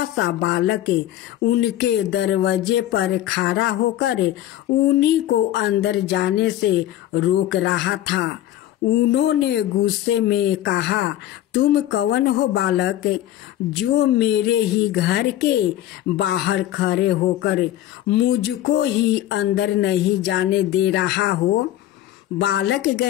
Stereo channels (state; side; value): quieter; right; 13.2 dB